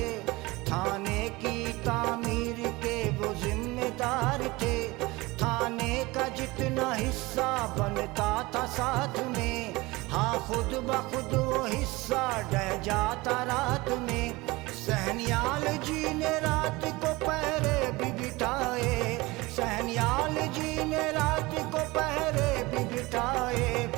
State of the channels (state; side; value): quieter; left; 22.1 dB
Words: थाने की तामीर के वो जिम्मेदार थे। थाने का जितना हिस्सा बनता था साथ में, हाँ खुद ब खुद वो हिस्सा ढह जाता रात में। सहनियाल जी ने रात को पहरे भी बिठाए, सहनियाल जी ने रात को पहरे भी बिठाए,